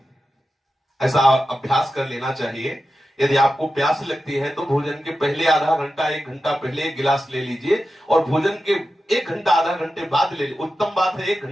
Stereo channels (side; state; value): both; normal; correlation 0.91